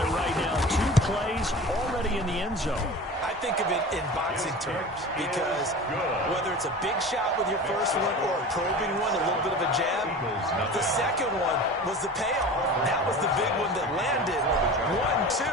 right now. 2 plays already in the end zone. I think of it in boxing terms because whether it's a big shot with your first one or a probing one, a little bit of a jab, the second one was the payoff. That was the big one that landed. 1-2,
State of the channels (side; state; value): both; normal; correlation 0.35